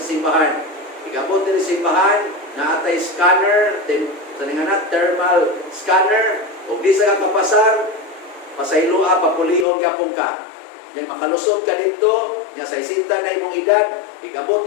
simbahan. Igabot din sa simbahan, na atay scanner, thermal scanner, o di sa kapasar, pasaylua, papulion yapon ka. Yung makalusot ka dito, niya sa isinta na imong edad, igabot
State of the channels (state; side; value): drops out; right; at 9.7 s